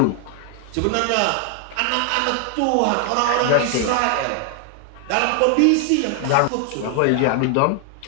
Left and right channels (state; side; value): different; both; correlation 0.00